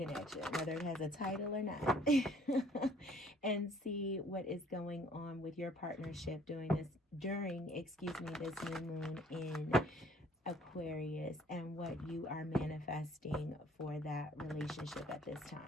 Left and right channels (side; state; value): both; normal; correlation 0.58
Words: whether it has a title or not, and see what is going on with your partnership during this new moon in Aquarius and what you are manifesting for that relationship at this